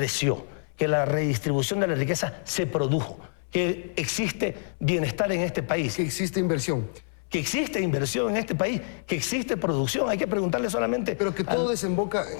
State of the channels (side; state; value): right; silent; 58 dB below the other